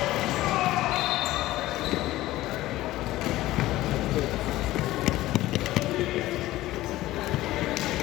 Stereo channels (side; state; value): right; quieter; 16.4 dB